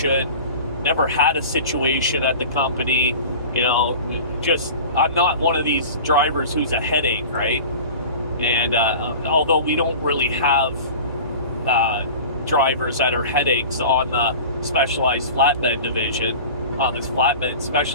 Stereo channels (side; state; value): both; inverted; correlation -0.37